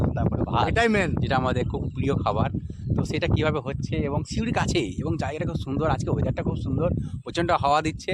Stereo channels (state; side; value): identical; both; correlation 1.00